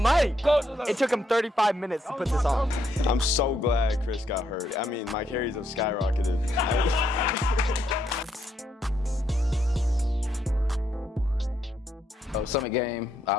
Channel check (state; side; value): normal; both; correlation 0.76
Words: mic. It took him 35 minutes to put this on. I'm so glad Chris got hurt. I mean, my carries have skyrocketed. Summit game,